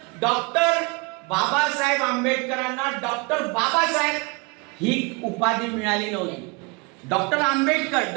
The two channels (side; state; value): left; quieter; 29.9 dB